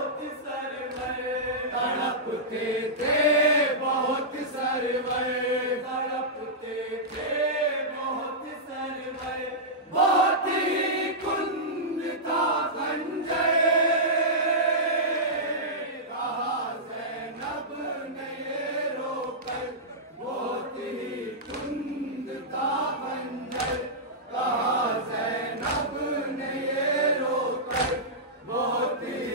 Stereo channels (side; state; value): both; normal; correlation -0.13